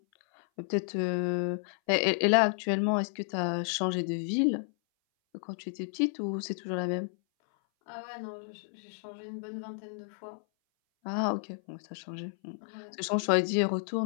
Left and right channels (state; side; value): silent; right; 57 dB below the other